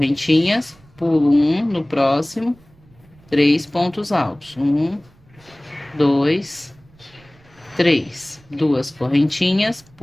pulo um no próximo, 3 pontos altos. 1, 2, 3. 2 correntinhas,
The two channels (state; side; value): noise; right; rumble, 28 dB below the sound